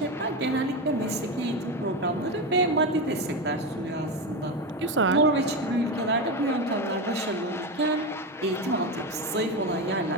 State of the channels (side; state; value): both; normal; correlation 0.16